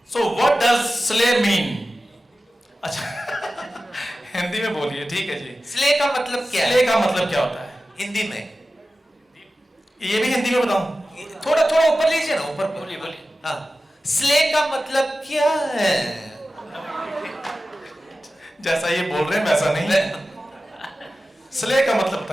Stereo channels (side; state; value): both; normal; correlation 0.94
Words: so what does slay mean? अच्छा हिंदी में बोलिए। ठीक है जी। स्ले का मतलब क्या है? स्ले का मतलब क्या होता है हिंदी में? ये भी हिंदी में बताऊं? थोड़ा थोड़ा ऊपर लीजिए ना, ऊपर बोलिए बोलिए। हाँ, स्ले का मतलब क्या है? जैसा ये बोल रहे हैं वैसा नहीं। स्ले का मतलब